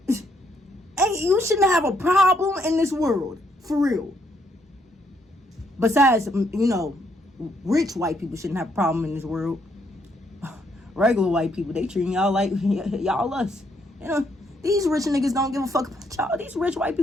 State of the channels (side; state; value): both; normal; correlation 0.73